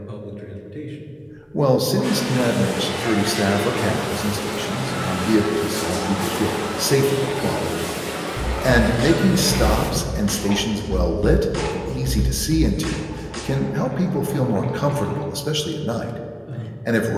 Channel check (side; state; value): both; identical; correlation 1.00